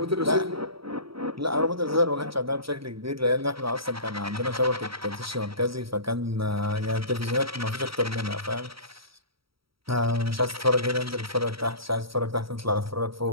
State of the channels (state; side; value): late; left; 0.75 ms